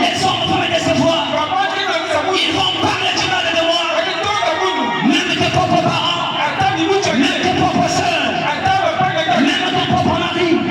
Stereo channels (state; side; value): identical; both; correlation 1.00